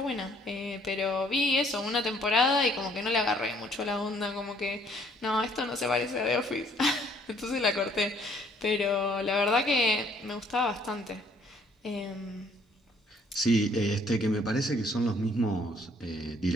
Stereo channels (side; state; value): both; normal; correlation 0.62